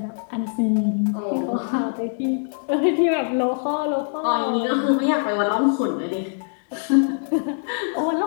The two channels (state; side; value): silent; right; digital silence